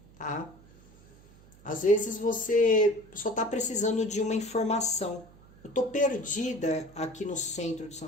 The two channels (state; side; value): noise; right; hum, 25 dB below the sound